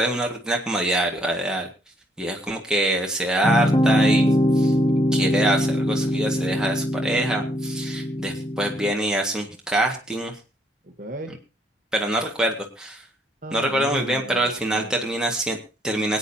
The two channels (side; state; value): both; normal; correlation 0.69